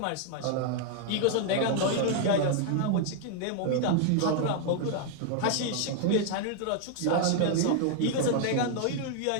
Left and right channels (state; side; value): different; both; correlation 0.00